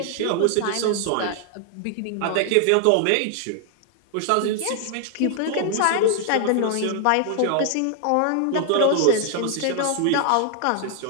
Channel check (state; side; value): different; both; correlation 0.00